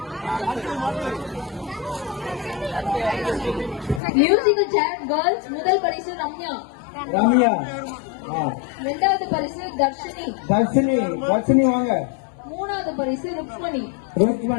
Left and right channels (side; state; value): right; drops out; at 4.0 s